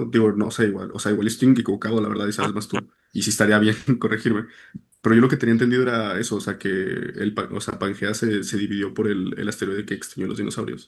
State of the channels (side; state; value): both; identical; correlation 1.00